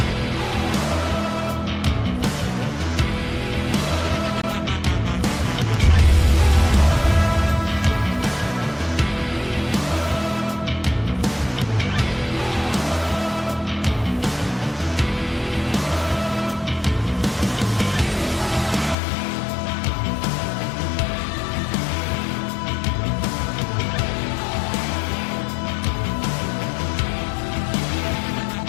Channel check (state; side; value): drops out; right; at 18.9 s